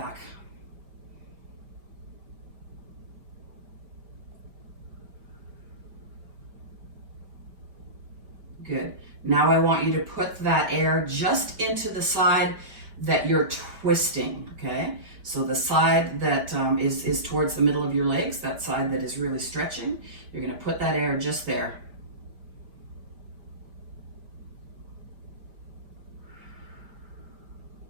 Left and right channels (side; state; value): left; late; 5.1 ms